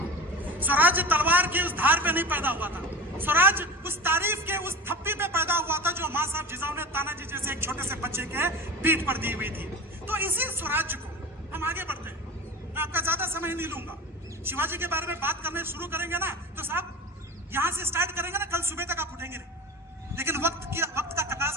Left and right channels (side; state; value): both; normal; correlation 0.32